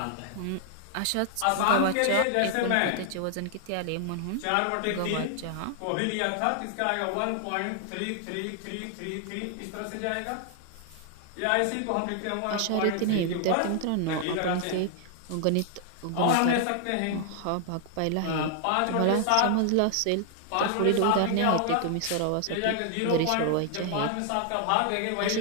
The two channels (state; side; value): different; both; correlation 0.00